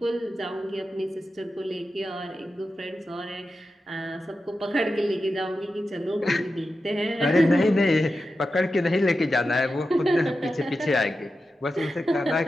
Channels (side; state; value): both; normal; correlation 0.91